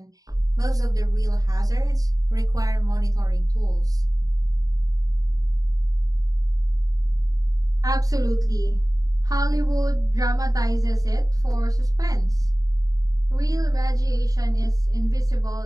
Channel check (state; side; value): late; left; 0.18 ms